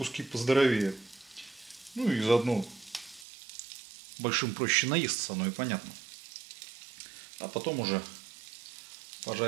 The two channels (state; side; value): drops out; left; at 3.2 s